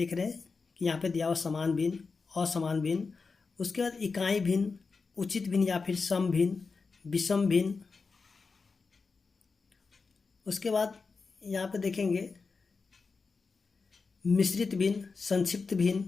रहे हैं कि यहाँ पे दिया हुआ समान भिन्न, असमान भिन्न, उसके बाद इकाई भिन्न, उचित भिन्न या फिर सम भिन्न, विषम भिन्न। उसके बाद यहाँ पे देखेंगे मिश्रित भिन्न, संक्षिप्त भिन्न,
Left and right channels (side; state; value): right; quieter; 4.6 dB